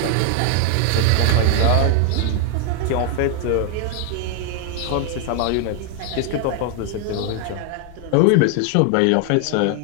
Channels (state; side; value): different; both; correlation 0.00